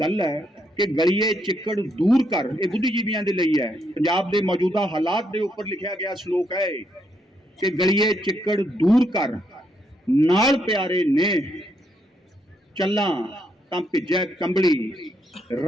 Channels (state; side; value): normal; both; correlation 0.76